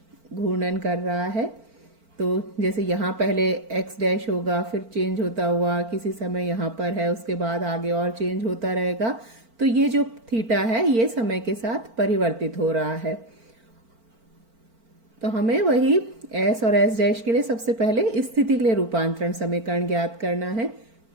घूर्णन कर रहा है। तो जैसे यहाँ पहले x डैश होगा, फिर चेंज होता हुआ किसी समय यहाँ पर है, उसके बाद आगे और चेंज होता रहेगा। तो ये जो थीटा है ये समय के साथ परिवर्तित हो रहा है। तो हमें वही s और s डैश के लिए सबसे पहले स्थिति के लिए रूपांतरण समीकरण ज्ञात करना है।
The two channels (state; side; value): late; left; 4.4 ms